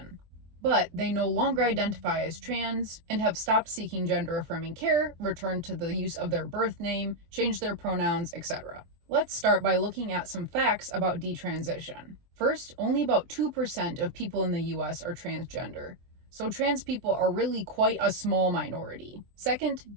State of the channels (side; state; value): left; late; 23 ms